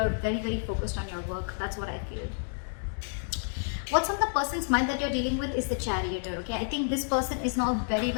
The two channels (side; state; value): right; silent; digital silence